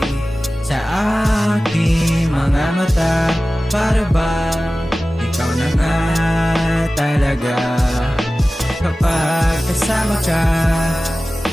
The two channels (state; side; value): normal; both; correlation 0.96